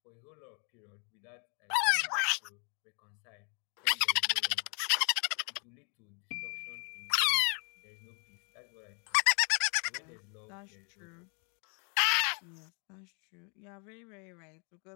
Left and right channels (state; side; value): quieter; right; 37.4 dB